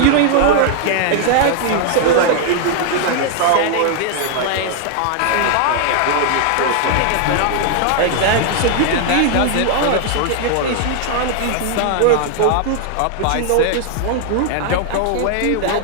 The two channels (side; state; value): both; different; correlation 0.00